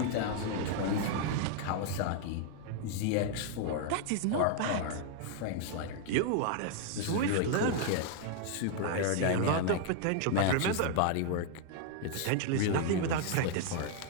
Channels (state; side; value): different; both; correlation 0.00